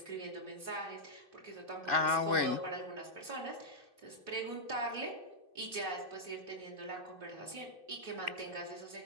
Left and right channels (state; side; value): late; left; 2.6 ms